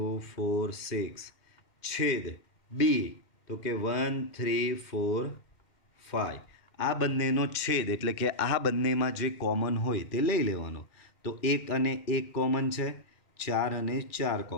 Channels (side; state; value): right; late; 2.1 ms